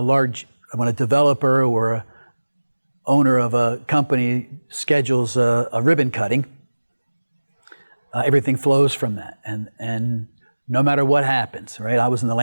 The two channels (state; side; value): inverted; both; correlation -1.00